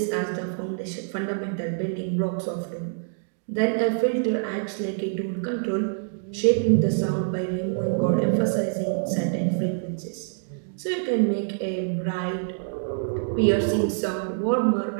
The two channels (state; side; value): silent; left; digital silence